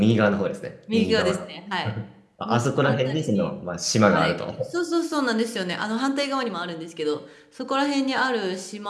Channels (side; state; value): both; identical; correlation 1.00